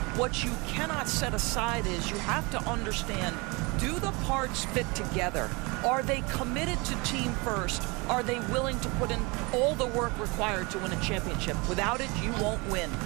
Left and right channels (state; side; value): quieter; left; 27.2 dB